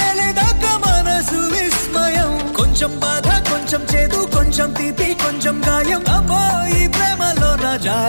తెలియదాక మనసు విస్మయం కొంచెం బాధ కొంచెం చేదు కొంచెం తీపి కొంచెం గాయం అమ్మో ఈ ప్రేమలో నా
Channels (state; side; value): inverted; both; correlation -1.00